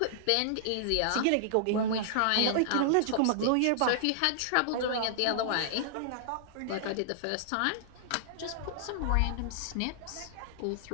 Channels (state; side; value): different; both; correlation -0.01